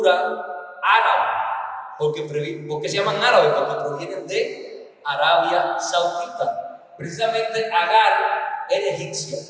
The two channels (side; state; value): both; identical; correlation 1.00